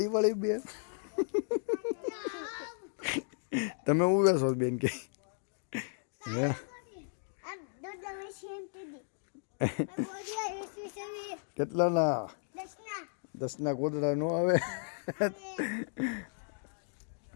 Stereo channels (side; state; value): right; silent; digital silence